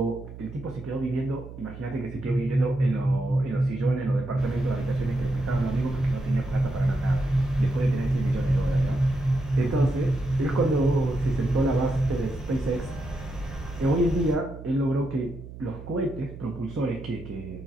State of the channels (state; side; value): noise; right; hum, 14 dB below the sound